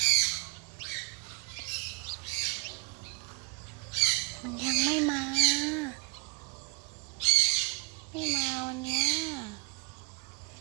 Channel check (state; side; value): quieter; left; 32.7 dB